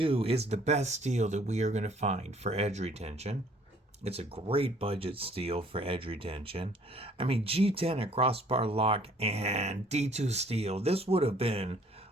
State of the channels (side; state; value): both; normal; correlation 0.58